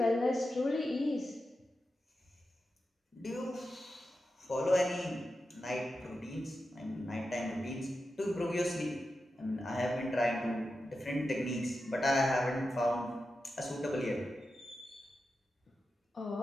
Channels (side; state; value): both; normal; correlation 0.90